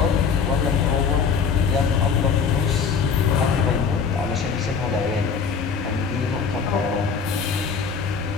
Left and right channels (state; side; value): quieter; right; 6.0 dB